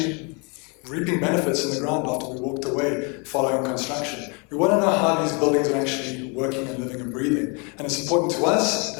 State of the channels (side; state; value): right; quieter; 33.0 dB